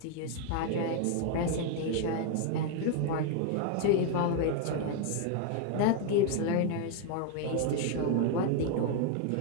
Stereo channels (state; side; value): different; both; correlation 0.00